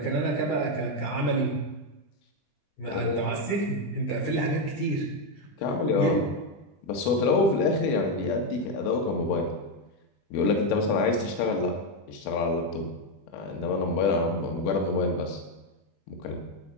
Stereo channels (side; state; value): right; late; 20 ms